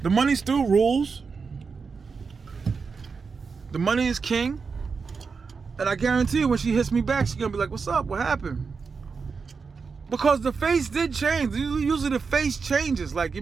the money still rules. The money is king. And I guarantee you when she hits me back, she's going to be like, what's up? What happened? Because the face did change. Usually the face changes. Like, you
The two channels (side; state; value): left; quieter; 5.1 dB